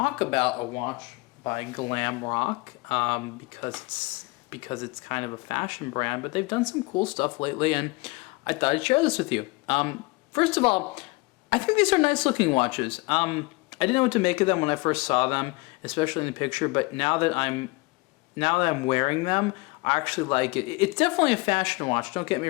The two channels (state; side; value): quieter; right; 24.7 dB